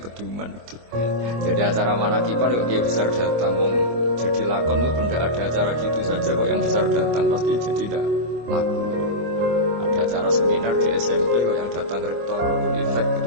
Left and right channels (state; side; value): late; left; 25 ms